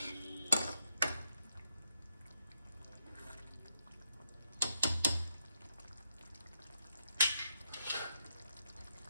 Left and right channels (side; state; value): both; inverted; correlation -0.80